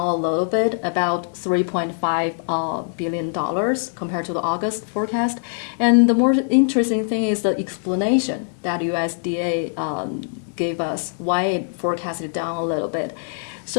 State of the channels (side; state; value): right; silent; 64 dB below the other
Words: a little bit, about $3.5 billion compared to the August forecast. And the more interesting thing is the explanation that USDA gave us why it forecasted down a little bit.